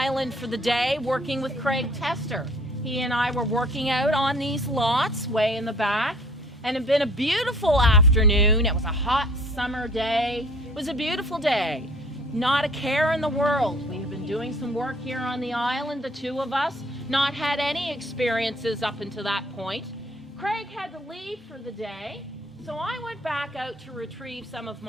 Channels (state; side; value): normal; both; correlation 0.53